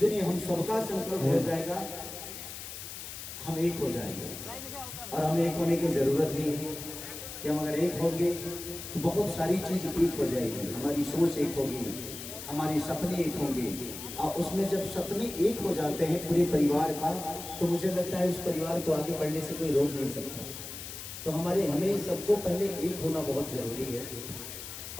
हम सबका संकल्प हो जाएगा, हम एक हो जाएंगे। और हमें एक होने की जरूरत भी है कि हम अगर एक होंगे तो बहुत सारी चीज एक हो जाएगी। हमारी सोच एक होगी, हमारे सपने एक होंगे, और उसमें जब सपने एक हो जाते हैं पूरे परिवार का, तो मुझे लगता है उस परिवार को आगे बढ़ने से कोई रोक नहीं सकता। तो हमें सबको पहले एक होना बहुत जरूरी है।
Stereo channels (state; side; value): noise; left; hiss, 10 dB below the sound